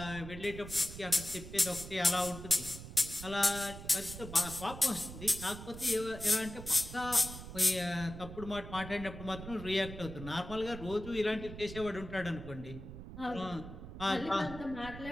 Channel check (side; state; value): right; noise; rumble, 11 dB below the sound